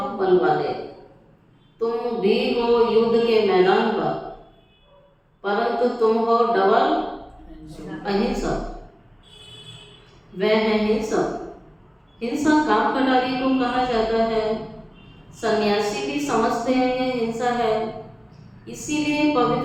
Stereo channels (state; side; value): identical; both; correlation 1.00